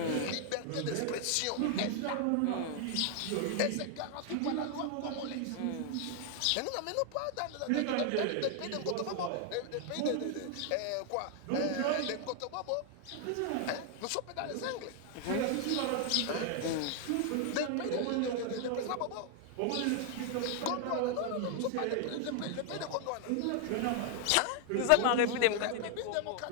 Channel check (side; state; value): both; different; correlation 0.00